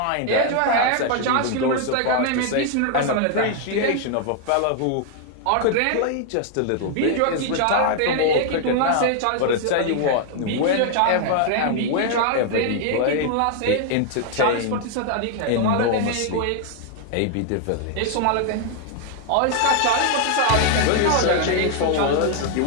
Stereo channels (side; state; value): both; different; correlation 0.00